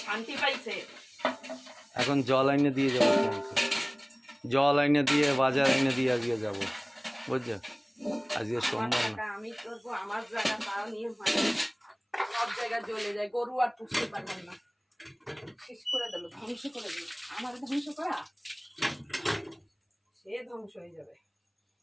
শান্তি পাইছে। এখন জল এনে দিয়ে যাবো তোমাকে, জল এনে দিয়ে বাজার এনে দিয়ে আজকে যাবো, বুঝছো? আজকে সোমবার না। আমি করবো আমার জায়গা, তাও নিয়ে সব জায়গায় জ্বলে যায়, গরু আর পুষতে পারবেন না। শেষ করে দিল, ধ্বংস করে দিল। আমার ধ্বংস করা, সে ধ্বংস হয়ে যাবে।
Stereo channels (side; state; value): both; identical; correlation 1.00